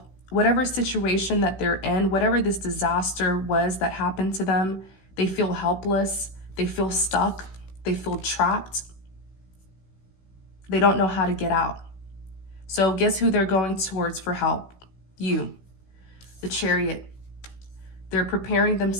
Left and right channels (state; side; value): late; right; 16 ms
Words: Whatever situation that they're in, whatever this disaster was that happened to them, they feel helpless, they feel stuck, they feel trapped. They don't know how to get out. So guess who they're going towards for help? You, the Chariot. They're preparing